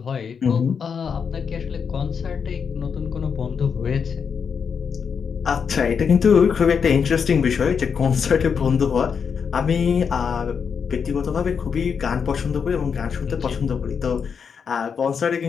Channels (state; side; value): quieter; right; 6.5 dB